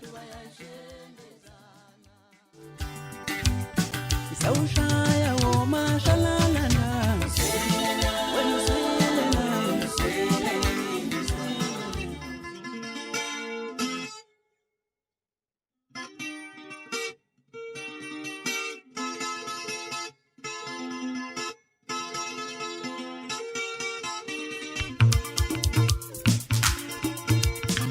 bayashendezana. Isawushaya womashalalana, wena uswelena,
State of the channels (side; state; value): both; identical; correlation 1.00